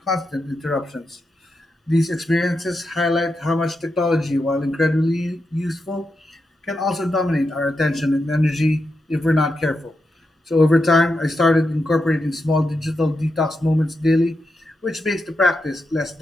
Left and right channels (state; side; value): normal; both; correlation 0.86